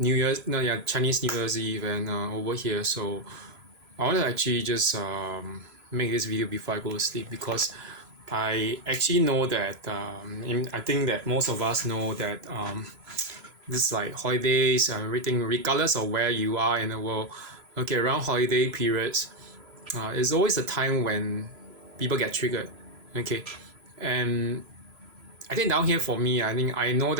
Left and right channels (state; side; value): late; left; 3.0 ms